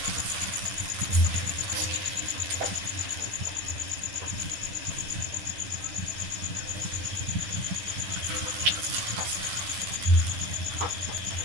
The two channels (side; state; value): left; late; 10 ms